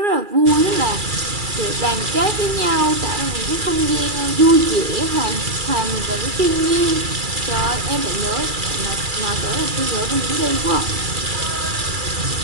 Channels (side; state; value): left; late; 2.3 ms